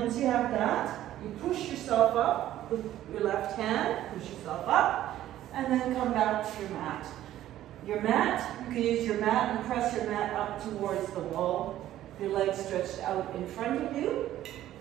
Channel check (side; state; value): left; quieter; 13.1 dB